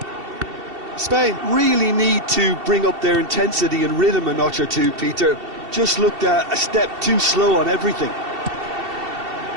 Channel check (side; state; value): left; late; 2.7 ms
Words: Spain really need to bring up their intensity and rhythm a notch or two, Peter. Just looked a step too slow on everything.